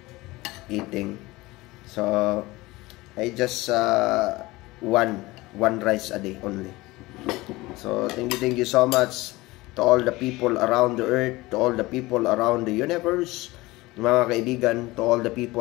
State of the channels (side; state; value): right; quieter; 20.4 dB